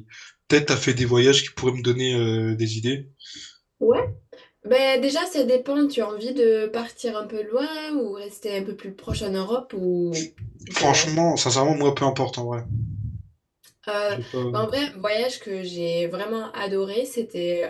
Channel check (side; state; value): both; identical; correlation 1.00